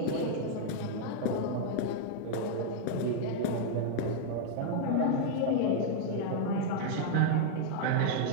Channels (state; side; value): different; both; correlation -0.01